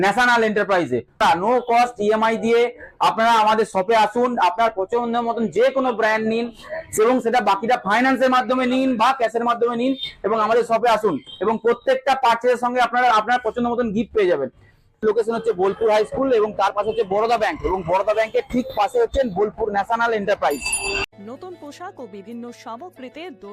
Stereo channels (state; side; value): identical; both; correlation 1.00